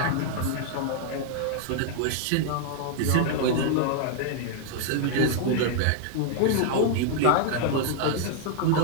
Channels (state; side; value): different; both; correlation 0.00